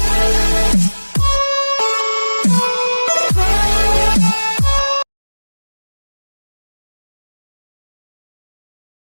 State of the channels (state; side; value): inverted; both; correlation -1.00